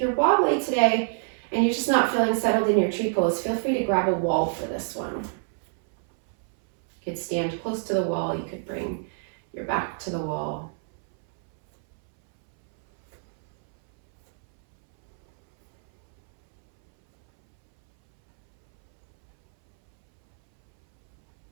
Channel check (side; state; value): left; silent; 62 dB below the other